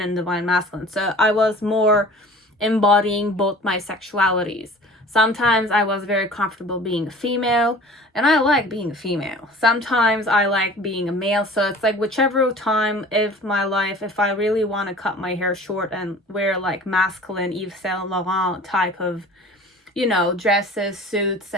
and divine masculine. So I was more embodying both my sexualities. Sometimes I was very comfortable being a female, and I like being a female. Sometimes I like being a male, so it's like whichever time of my life, if I really want to cut my hair short and wear like masculine Yves Saint Laurent type of, you know, dresses, suits,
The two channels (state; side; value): normal; both; correlation 0.44